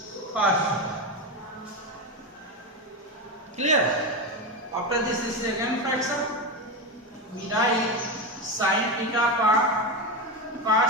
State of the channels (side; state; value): both; normal; correlation 0.15